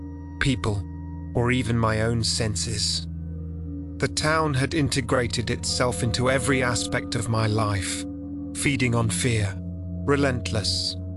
people, or even my own senses. The town had integrated itself into every aspect of my life, feeding on fear, relentless,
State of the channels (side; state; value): both; identical; correlation 1.00